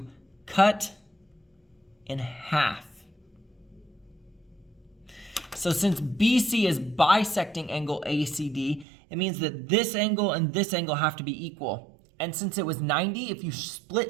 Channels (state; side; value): drops out; left; at 8.8 s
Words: cut in half. So since BC is bisecting angle ACD, it means that this angle and this angle have to be equal. And since it was 90, if you